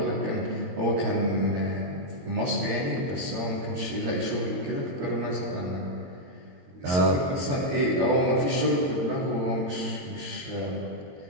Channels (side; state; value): left; late; 22 ms